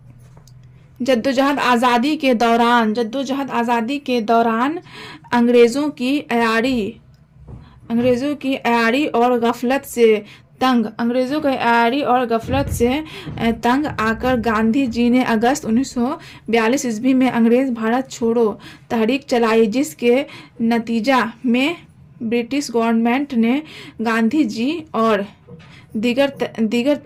जद्दोजहद आज़ादी के दौरान अंग्रेज़ों की अयारी और गफलत से तंग आकर गांधी जी ने अगस्त 1942 ईस्वी में अंग्रेज़ भारत छोड़ो तहरीक चलाई जिसके नतीजा में ब्रिटिश गवर्नमेंट ने गांधी जी और दीगर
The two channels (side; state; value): both; identical; correlation 1.00